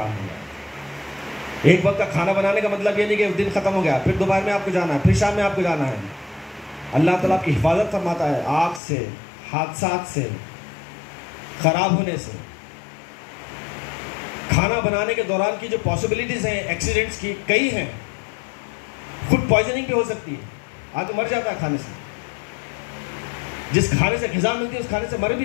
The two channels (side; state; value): right; drops out; at 8.8 s